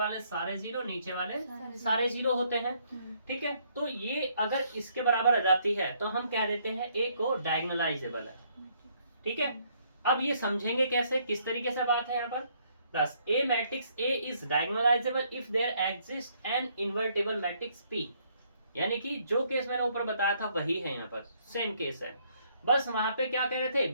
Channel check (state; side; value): inverted; both; correlation -0.68